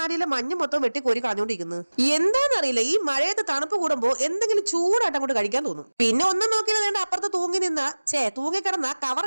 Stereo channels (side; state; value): both; inverted; correlation -1.00